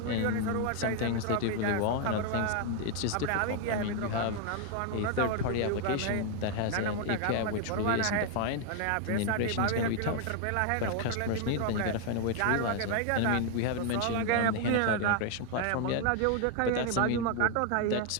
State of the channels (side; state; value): both; different; correlation 0.00